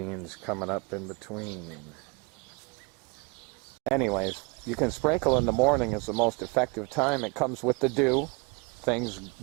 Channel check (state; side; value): quieter; left; 30.1 dB